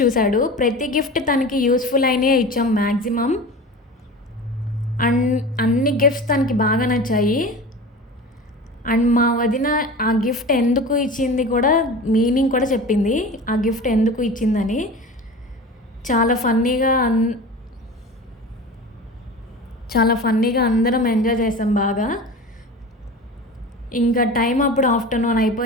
ప్రతి గిఫ్ట్ తనకి యూస్ఫుల్ అయినే ఇచ్చాం మ్యాక్సిమం. అండ్ అన్ని గిఫ్ట్స్ తనకి బాగా నచ్చాయి. అండ్ మా వదిన ఆ గిఫ్ట్ ఎందుకు ఇచ్చింది కూడా, మీనింగ్ కూడా చెప్పింది, ఆ గిఫ్ట్ ఎందుకు ఇచ్చిందని. చాలా ఫన్నీగా అందరం ఎంజాయ్ చేసాం బాగా. ఇంకా టైం అప్పుడు ఆఫ్టర్నూన్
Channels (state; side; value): normal; both; correlation 0.33